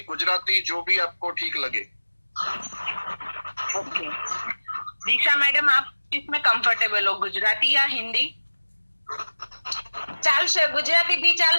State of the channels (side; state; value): both; inverted; correlation -1.00